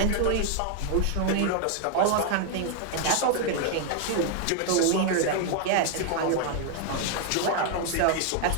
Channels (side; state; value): both; different; correlation 0.00